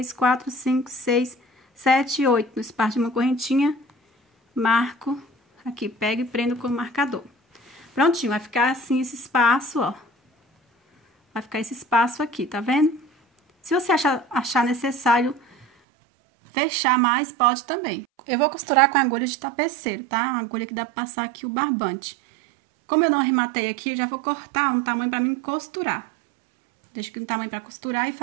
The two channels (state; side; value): drops out; left; at 15.7 s